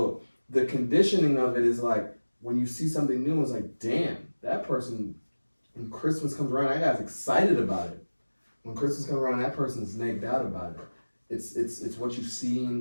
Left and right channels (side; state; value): both; inverted; correlation -1.00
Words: the conditioning of it is like, when you see something new, it's like, damn, that person, when Christmas comes around, that guy's excited about it. When Christmas comes around, that person's nagged out about it. It's what you've